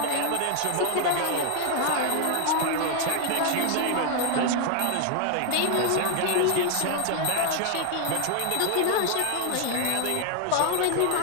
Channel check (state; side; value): different; both; correlation 0.00